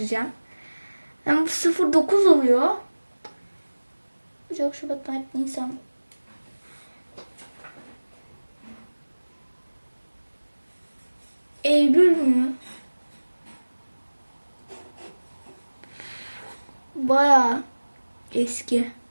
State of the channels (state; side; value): inverted; both; correlation -1.00